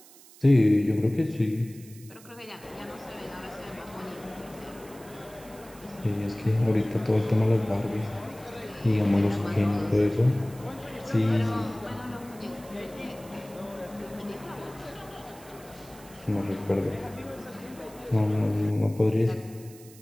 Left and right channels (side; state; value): right; noise; hiss, 22 dB below the sound